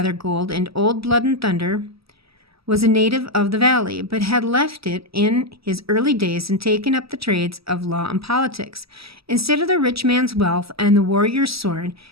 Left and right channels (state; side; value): late; left; 0.76 ms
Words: and Old Blood and Thunder, was a native of the valley, but had left it in his early days and taken up the trades of law and politics. Instead of the rich man's wealth and the warrior's sword,